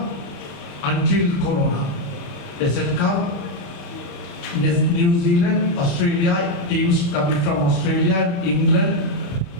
until Corona. Desert Cup, New Zealand, Australia, teams coming from Australia, England.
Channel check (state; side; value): late; right; 35 ms